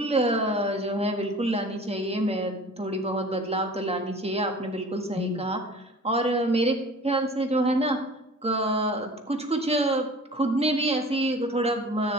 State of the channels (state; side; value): normal; both; correlation 0.44